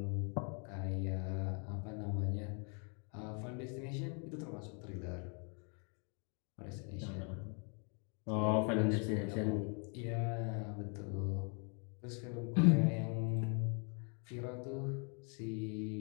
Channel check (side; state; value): right; quieter; 38.5 dB